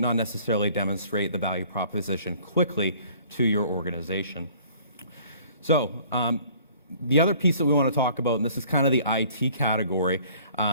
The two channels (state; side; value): inverted; both; correlation -0.54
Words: not necessarily demonstrate the value proposition quickly to your organization. So the other piece that we want to talk about, and this is kind of the IT category,